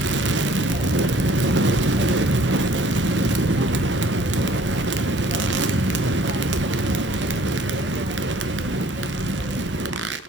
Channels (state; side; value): normal; both; correlation 0.56